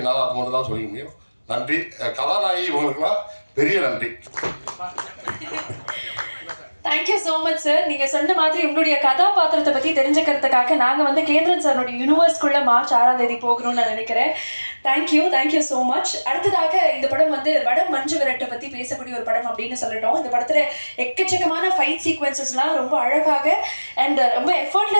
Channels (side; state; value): both; inverted; correlation -1.00